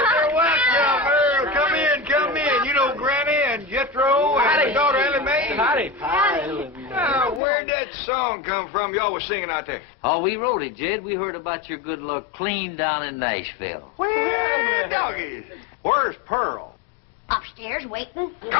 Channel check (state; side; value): drops out; right; at 7.4 s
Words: Welcome, Earl. Come in, come in. You know Granny and Jethro and Howdy. the daughter Ellie Mae? Howdy. Where'd that song come from y'all was singing out there? Oh, we wrote it, Jed. We heard about your good luck clean down in Nashville. Where doggies? Where's Pearl? Upstairs waiting. Come